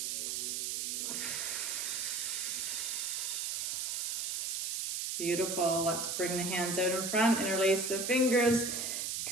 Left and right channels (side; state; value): right; noise; hiss, 1 dB below the sound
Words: Beautiful. Let's bring the hands out in front, interlace the fingers,